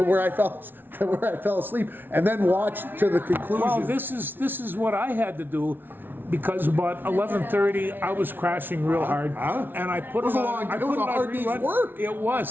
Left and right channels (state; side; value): late; left; 0.098 ms